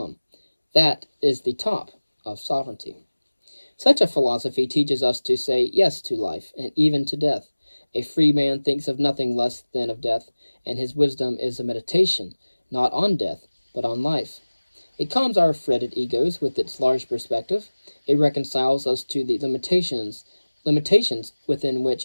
That is the top of sovereignty. Such a philosophy teaches us to say yes to life, and even to death. A free man thinks of nothing less than of death, and his wisdom is a meditation, not on death, but on life. It calms our fretted egos with its large perspective. It reconciles us to the limitations within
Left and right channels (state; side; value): inverted; both; correlation -1.00